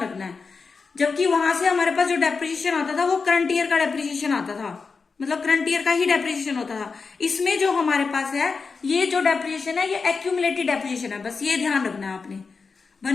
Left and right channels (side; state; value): right; quieter; 4.8 dB